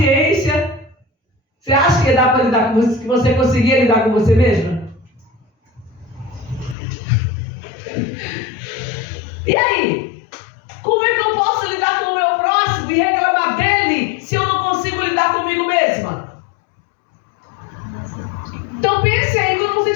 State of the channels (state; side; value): drops out; right; at 6.8 s